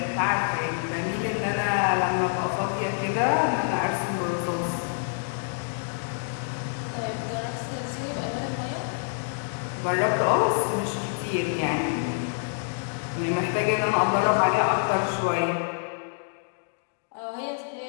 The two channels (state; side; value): silent; right; digital silence